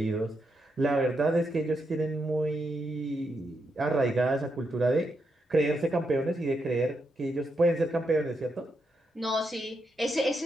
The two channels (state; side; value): normal; both; correlation 0.82